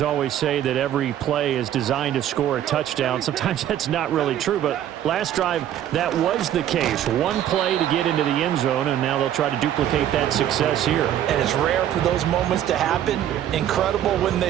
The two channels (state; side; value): quieter; left; 11.2 dB